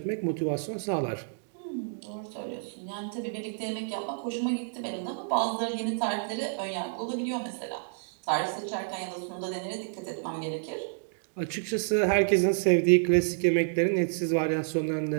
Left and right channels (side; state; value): left; silent; digital silence